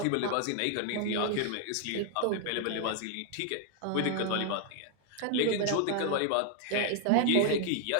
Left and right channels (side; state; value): both; different; correlation 0.00